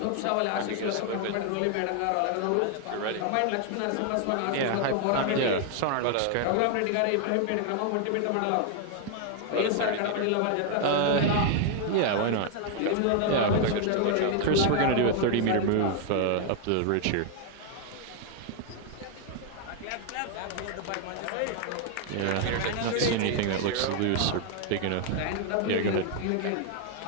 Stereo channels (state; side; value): different; both; correlation 0.00